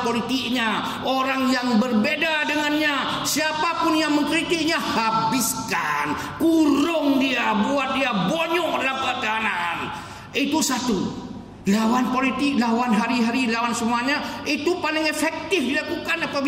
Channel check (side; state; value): both; identical; correlation 1.00